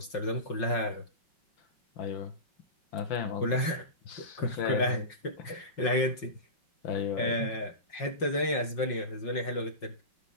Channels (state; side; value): late; right; 5.5 ms